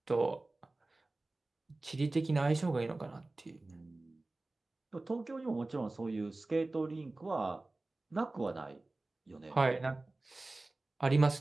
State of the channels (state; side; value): quieter; left; 3.0 dB